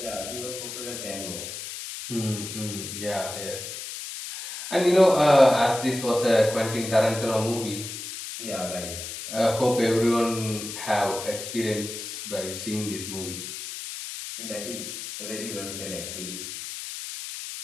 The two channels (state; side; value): noise; left; hiss, 8 dB below the sound